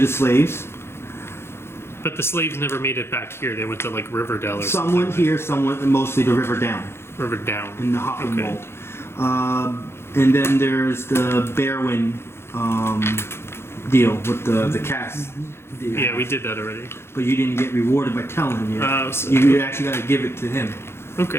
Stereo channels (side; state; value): right; late; 0.12 ms